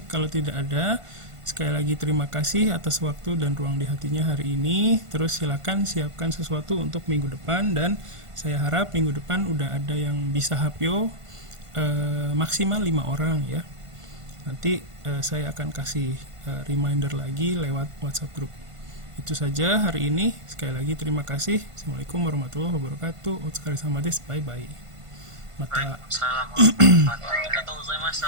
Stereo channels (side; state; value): left; late; 1.5 ms